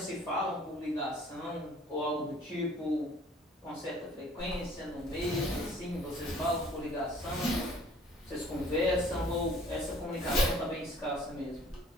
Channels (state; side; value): normal; both; correlation 0.54